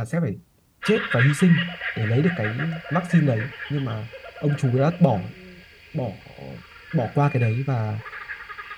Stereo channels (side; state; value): both; identical; correlation 1.00